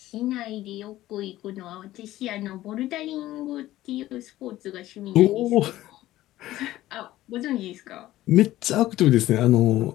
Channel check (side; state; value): right; quieter; 15.3 dB